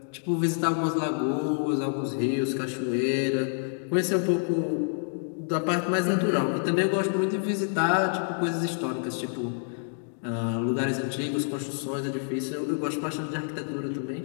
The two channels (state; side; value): silent; right; digital silence